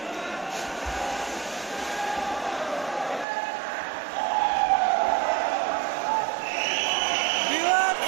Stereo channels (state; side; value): drops out; left; at 3.2 s